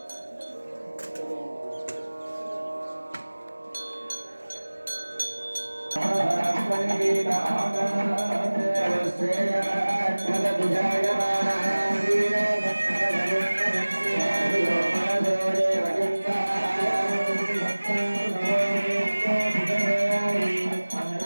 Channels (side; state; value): both; inverted; correlation -1.00